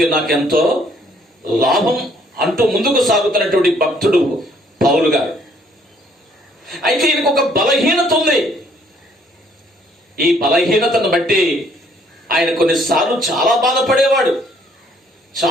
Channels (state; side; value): normal; both; correlation 0.64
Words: నాకెంతో లాభం అంటూ ముందుకు సాగుతున్నటువంటి భక్తుడు పౌలు గారు. అయితే ఈయనకు ఒక బలహీనత ఉంది. ఈ బలహీనతను బట్టి ఆయన కొన్నిసార్లు చాలా బాధపడేవాడు,